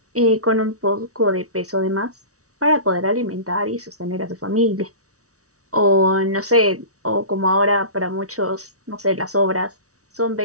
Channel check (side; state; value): left; late; 0.66 ms